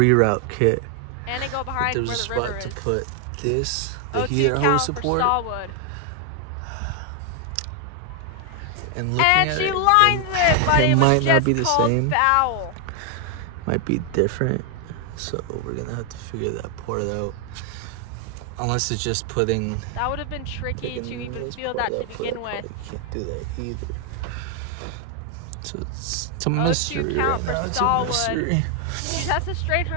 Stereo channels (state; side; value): different; both; correlation 0.00